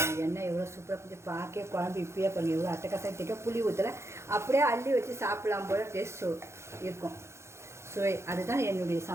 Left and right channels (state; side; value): late; left; 0.13 ms